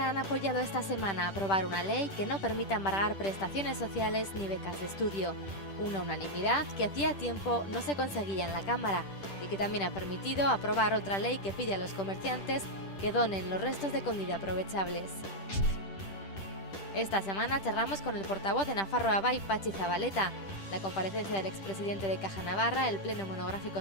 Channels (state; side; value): late; right; 10 ms